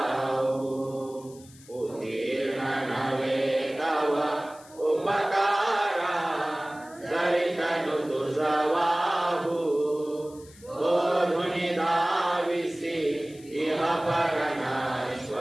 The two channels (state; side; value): noise; left; hiss, 23 dB below the sound